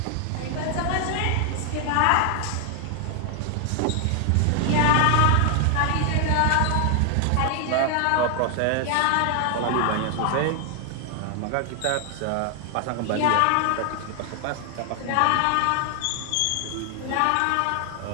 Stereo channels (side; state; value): both; different; correlation 0.00